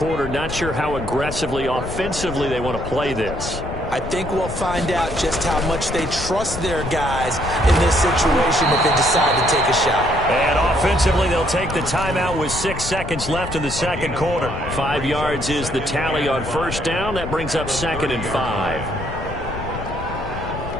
not sure how aggressively, offensively they want to play this. I think we'll find out just how much they trust their guys in this situation if they decide to take a shot. And offensively, they'll take the timeout with 6 seconds left in the second quarter. 5 yards is the tally on first down. That brings up 2nd and 5.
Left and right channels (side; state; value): left; noise; rumble, 8 dB below the sound